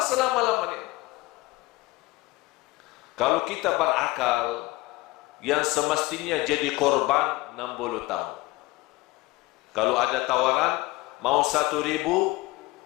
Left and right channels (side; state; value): right; quieter; 20.1 dB